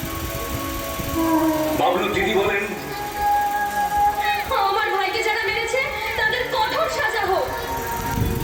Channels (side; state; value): both; identical; correlation 1.00